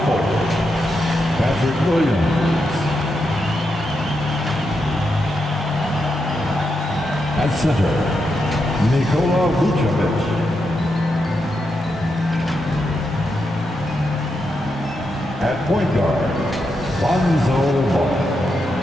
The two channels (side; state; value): both; normal; correlation 0.84